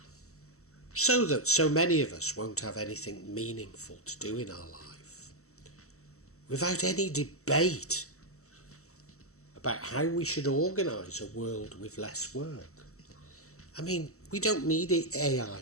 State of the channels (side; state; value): right; late; 0.64 ms